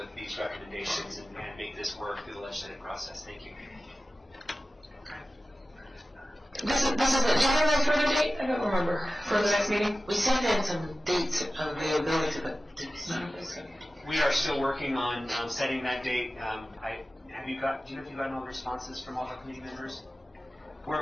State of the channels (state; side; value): normal; both; correlation 0.95